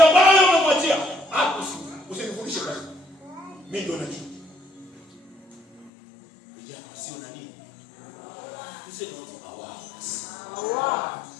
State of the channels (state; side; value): drops out; right; at 5.9 s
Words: bado unamwachia. Hapo usinifundishe kazi. Mimi ndo najua. Vijana wasio na nini? Tuseme watu hawa.